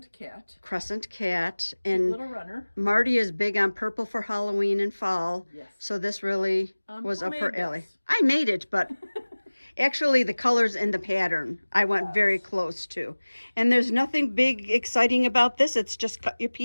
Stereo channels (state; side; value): inverted; both; correlation -1.00